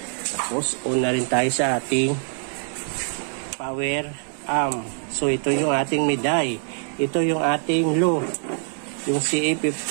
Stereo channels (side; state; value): left; silent; 63 dB below the other